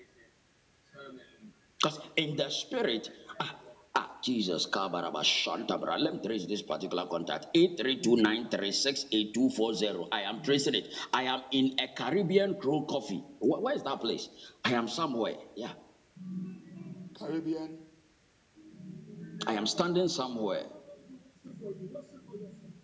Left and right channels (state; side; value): identical; both; correlation 1.00